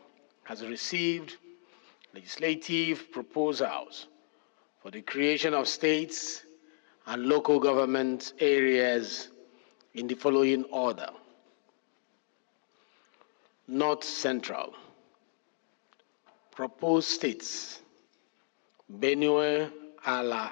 has received legislative proposals for the creation of states and local government areas in the following order. North Central. Proposed states: Benue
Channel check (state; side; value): silent; right; digital silence